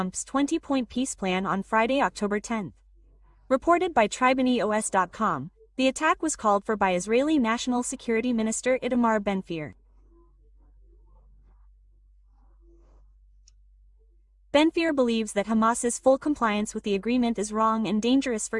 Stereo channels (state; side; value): identical; both; correlation 1.00